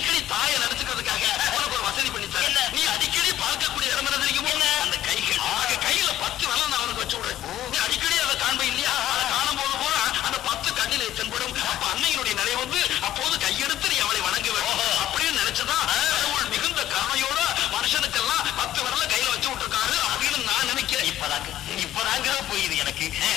தாயை நினைச்சுக்கிறதுக்காக உனக்கு ஒரு வசதி பண்ணித்தர. நீ அடிக்கடி பார்க்கக்கூடிய இடம் என்ன தெரியுமோ? அந்த கைகள். கையில 10 வரல நான் உனக்கு வச்சு விடுறேன். நீ அடிக்கடி அதை காண்ப இல்லையா? அதை காணும் போது போல அந்த 10 கண்ணிலே தென்படும். அப்ப அன்னையினுடைய நிலை வந்து அப்போது கையெடுத்து நீ அவளை வணங்க வேண்டும் அப்படின்னு நினைச்சதான் கடவுள் மிகுந்த கருணையோட மனுஷனுக்கெல்லாம் 10 வரல கையில வச்சு விட்டுருக்காரு அப்படின்னு நான் நினைக்கிறேன். இப்பதாங்க புரியுது எனக்கு.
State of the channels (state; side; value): quieter; right; 12.9 dB